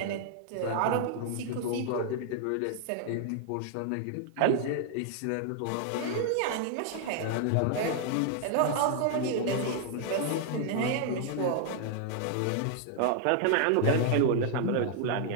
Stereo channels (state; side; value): different; both; correlation 0.00